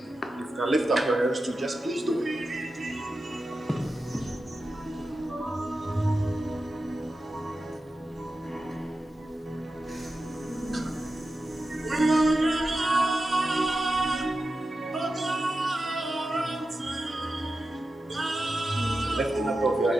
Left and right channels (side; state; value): both; normal; correlation 0.91